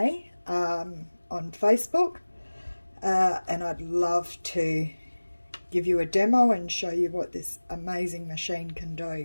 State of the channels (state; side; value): inverted; both; correlation -1.00